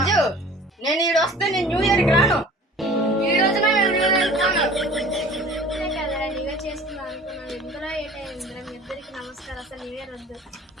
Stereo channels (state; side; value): normal; both; correlation 0.45